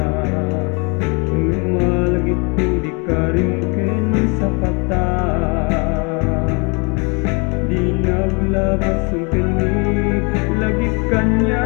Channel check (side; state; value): right; quieter; 32.5 dB